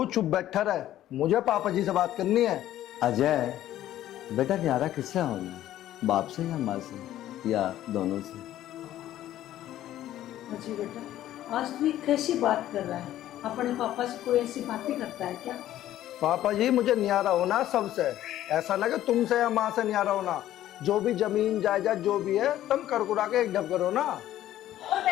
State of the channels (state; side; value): quieter; right; 13.1 dB